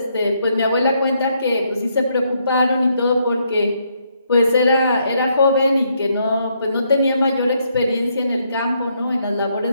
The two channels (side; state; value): both; inverted; correlation -0.74